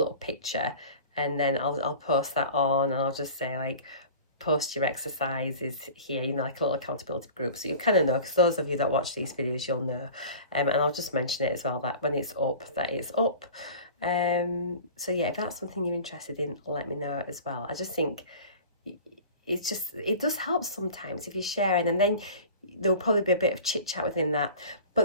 picture, and then I'll post that on, and I'll just say like, post your exercises here, you know, like a little accountability group, so you kind of know, because those of you that watch these videos, you'll know. And I'll just mention it as well, that when it's up, that it's up. So yeah, if that's something you're interested in, let me know as well. I just think it does help sometimes if you're sharing, and then there'll probably be a bit of chit chat within that. But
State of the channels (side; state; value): both; inverted; correlation -0.40